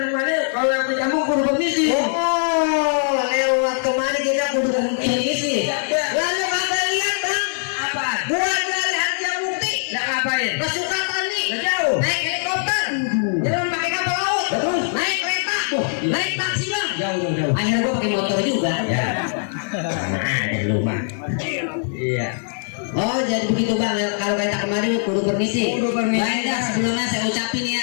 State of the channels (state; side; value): silent; right; 64 dB below the other